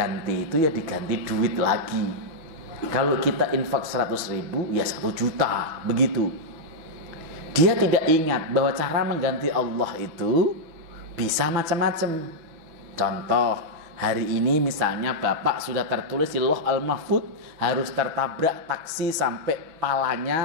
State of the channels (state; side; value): late; left; 6.2 ms